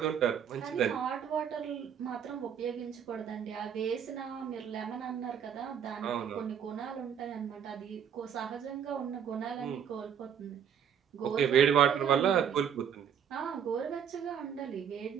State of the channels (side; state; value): left; quieter; 8.2 dB